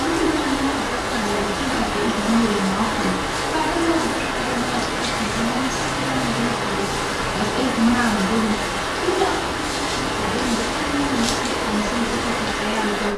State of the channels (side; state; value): both; identical; correlation 1.00